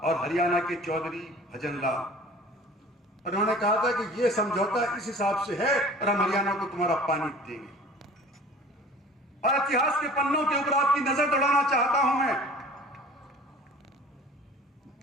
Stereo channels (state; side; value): normal; both; correlation 0.44